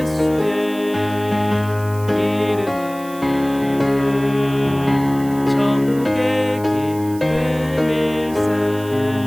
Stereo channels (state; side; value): noise; right; hiss, 19 dB below the sound